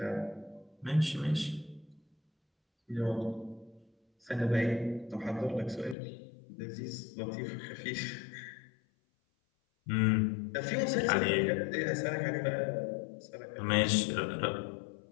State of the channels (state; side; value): drops out; right; at 6.0 s